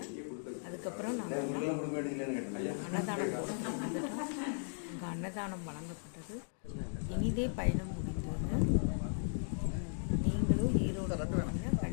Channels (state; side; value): silent; right; digital silence